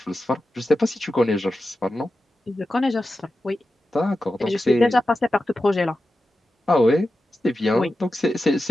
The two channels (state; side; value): normal; both; correlation 0.92